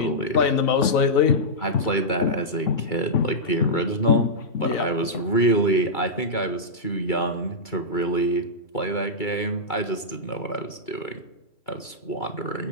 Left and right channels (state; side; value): late; right; 2.3 ms